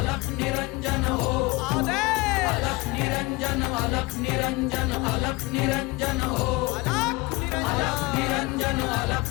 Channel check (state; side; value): quieter; right; 23.7 dB